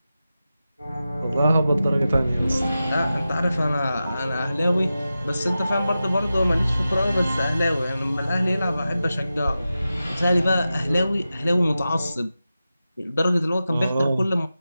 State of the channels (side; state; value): both; inverted; correlation -0.93